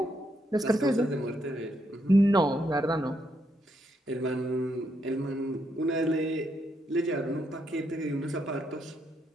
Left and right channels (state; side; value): normal; both; correlation 0.78